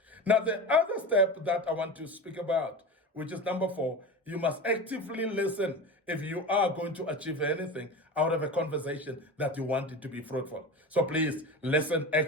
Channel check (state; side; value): normal; both; correlation 0.28